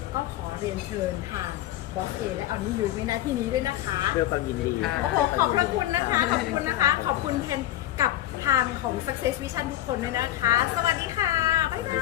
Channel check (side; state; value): right; quieter; 13.9 dB